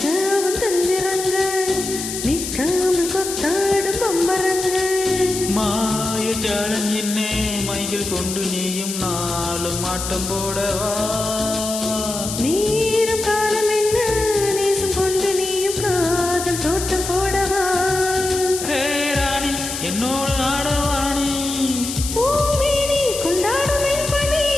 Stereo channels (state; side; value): noise; left; hiss, 6 dB below the sound